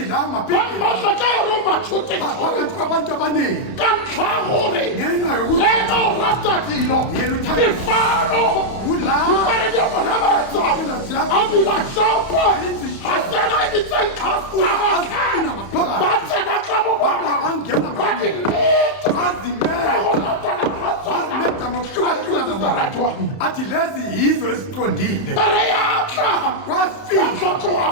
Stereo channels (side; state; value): right; late; 31 ms